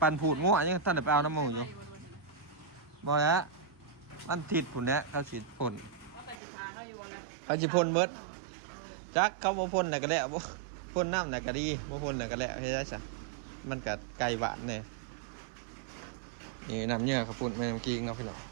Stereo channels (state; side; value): drops out; left; at 6.4 s